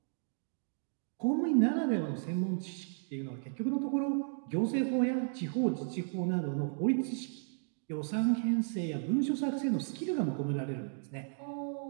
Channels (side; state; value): left; silent; digital silence